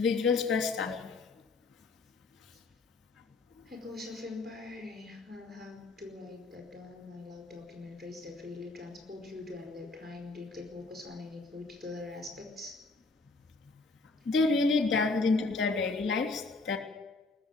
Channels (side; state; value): right; quieter; 3.7 dB